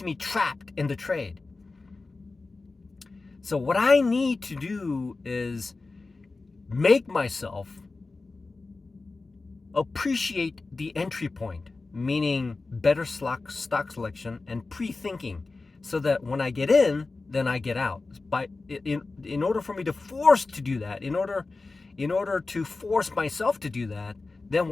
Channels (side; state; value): right; quieter; 3.7 dB